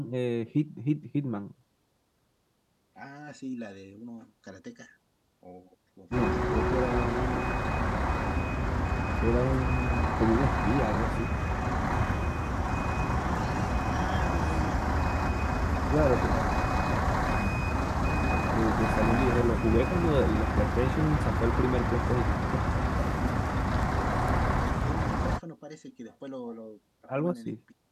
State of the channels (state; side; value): identical; both; correlation 1.00